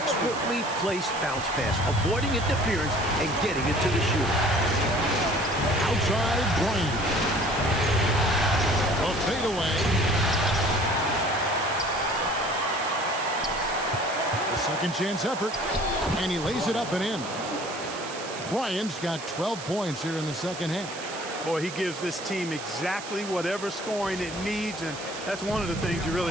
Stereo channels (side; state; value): right; noise; hiss, 11 dB below the sound